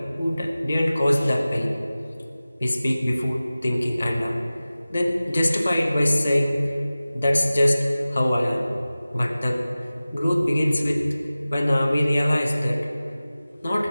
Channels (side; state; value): both; inverted; correlation -0.97